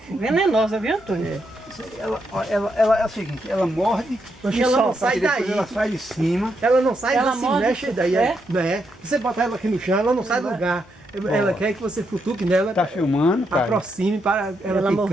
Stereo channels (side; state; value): both; normal; correlation 0.80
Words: Venenosa, viu, Antônio? Ela é o seguinte, ela morde E ela não sai depois daí. ela sai de cima. Ela não sai, Ela ela se morde, mexe daí. é? É. Você botar ela aqui no chão, ela não sai do lugar. Ela quer que você futuque nela, Tá filmando, cara. aproxime para ela Ela